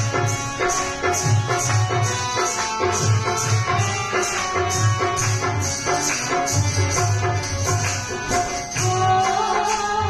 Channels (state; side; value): identical; both; correlation 1.00